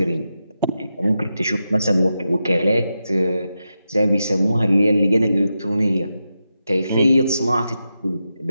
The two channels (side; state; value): both; inverted; correlation -0.88